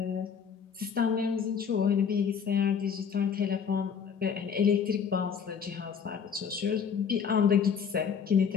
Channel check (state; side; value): quieter; right; 6.9 dB